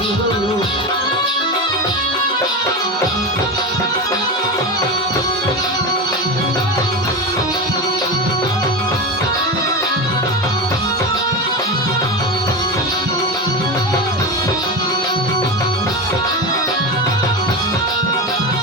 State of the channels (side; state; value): both; normal; correlation 0.21